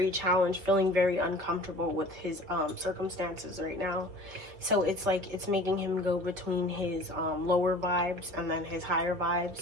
challenged, feeling very uncomfortable with his circumstances right now. So it's like it's making him go between his lower vibes and then his higher vibes.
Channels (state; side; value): late; left; 5.1 ms